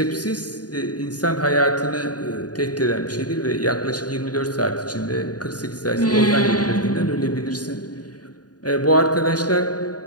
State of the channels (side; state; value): right; late; 0.69 ms